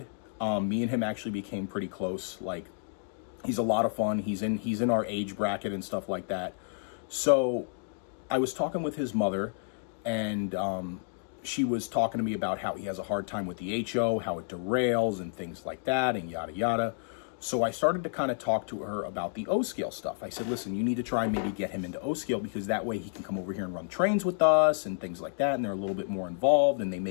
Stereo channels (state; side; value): silent; right; digital silence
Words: Me and him actually became pretty close. Like, he's a lot of fun. He's in our age bracket and stuff like that. So I was talking with his mother, and she was talking to me about how he has a hard time with the HO, how it derails and things like that, and yada yada. So I started to kind of talk to her about the O-scale stuff. I said, listen, you need to try and maybe get him into O-scale because that way he can come over here and run trains with us and things like that. And they're a little bit more involved and they